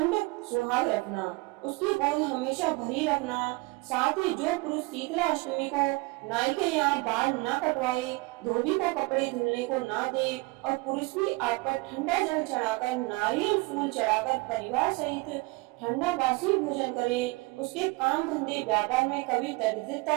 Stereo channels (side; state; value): left; quieter; 25.4 dB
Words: सुहाग रखना, उसकी गोद हमेशा भरी रखना। साथ ही जो पुरुष शीतला अष्टमी को नाई के यहाँ बाल न कटवाए, धोबी को कपड़े धुलने को ना दे और पुरुष भी आप पर ठंडा जल चढ़ाकर, नारियल फूल चढ़ाकर परिवार सहित ठंडा बासी भोजन करे, उसके काम धंधे व्यापार में कभी